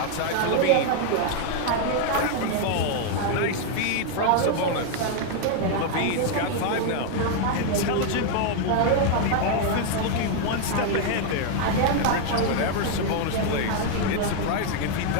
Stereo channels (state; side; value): different; both; correlation 0.00